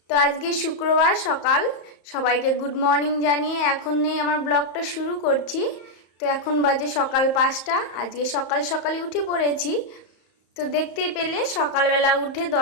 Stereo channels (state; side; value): late; right; 34 ms